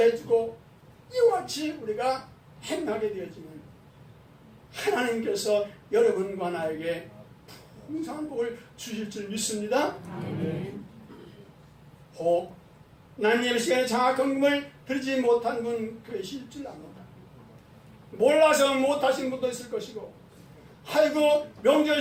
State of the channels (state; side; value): identical; both; correlation 1.00